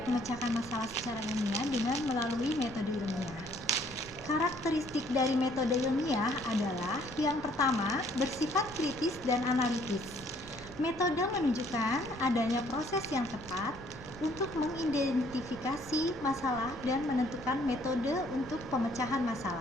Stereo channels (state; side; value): normal; both; correlation 0.62